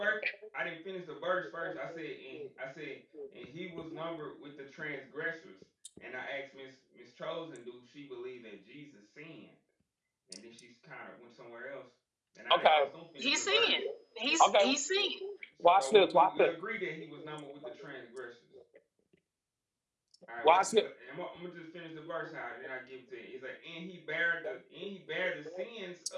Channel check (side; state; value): both; identical; correlation 1.00